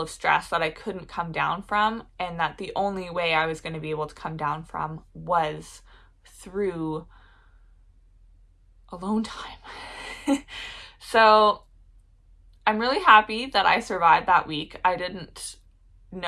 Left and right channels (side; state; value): both; identical; correlation 1.00